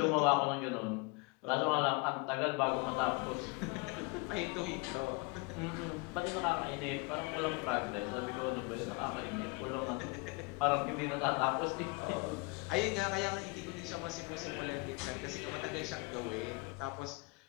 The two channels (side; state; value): right; quieter; 28.3 dB